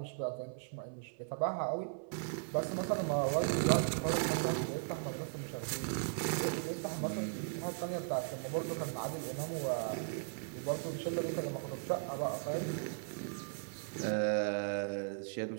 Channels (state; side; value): silent; left; 53 dB below the other